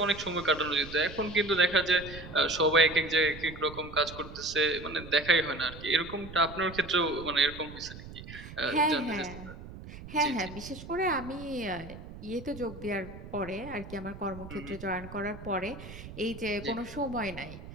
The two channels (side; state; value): right; noise; rumble, 14 dB below the sound